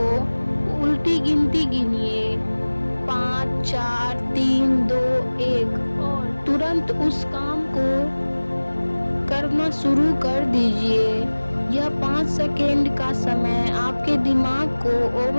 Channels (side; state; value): both; inverted; correlation -1.00